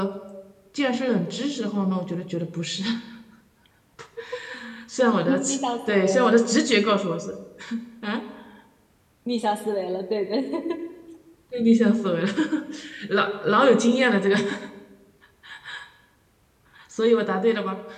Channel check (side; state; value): both; identical; correlation 1.00